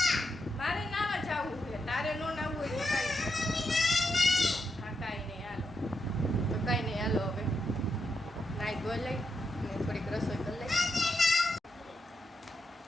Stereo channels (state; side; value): normal; both; correlation 0.84